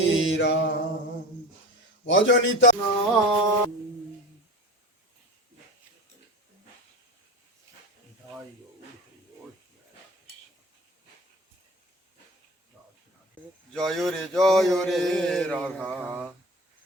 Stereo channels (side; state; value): both; normal; correlation 0.34